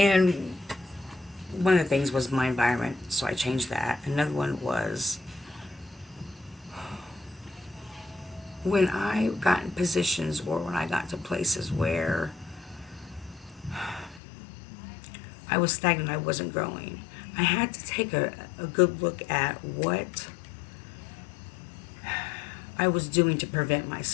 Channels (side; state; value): right; drops out; at 14.2 s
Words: one of the things was my environment, so I changed that. Another one was when I got in positions or when I got to places where I was stagnant, I wasn't growing. I had to take a good look at what I was doing to prevent